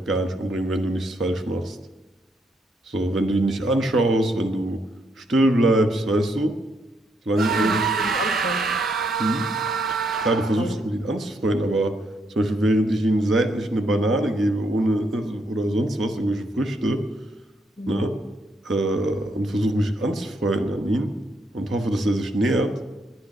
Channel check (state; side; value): normal; both; correlation 0.76